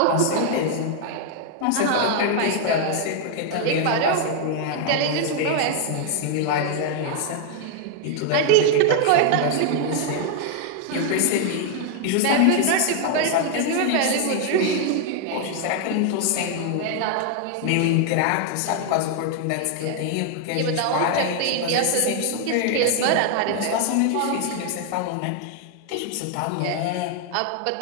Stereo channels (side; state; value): both; different; correlation 0.00